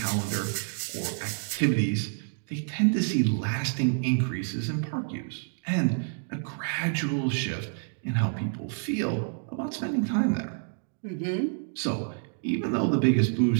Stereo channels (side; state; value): left; silent; digital silence